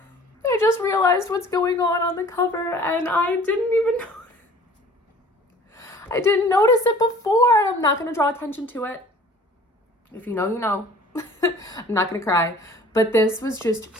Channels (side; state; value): both; normal; correlation 0.49